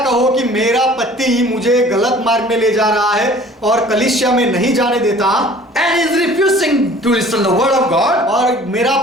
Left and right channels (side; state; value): both; normal; correlation 0.49